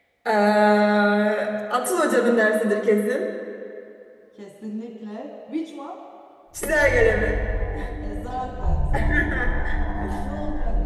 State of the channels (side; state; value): both; identical; correlation 1.00